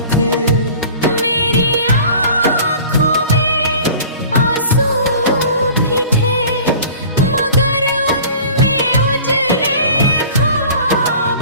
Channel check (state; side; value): inverted; both; correlation -0.44